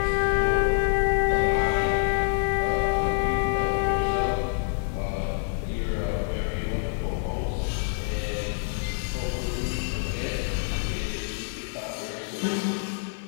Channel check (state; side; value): silent; right; digital silence